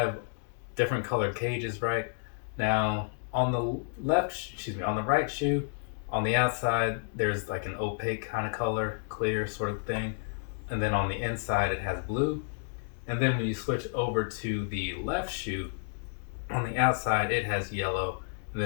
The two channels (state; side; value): silent; right; digital silence